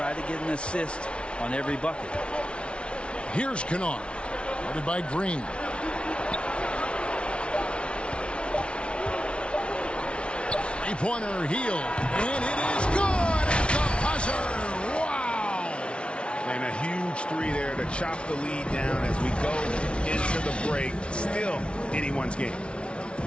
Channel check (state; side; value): late; right; 0.059 ms